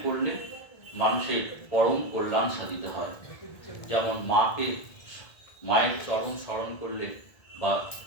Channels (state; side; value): late; right; 1.7 ms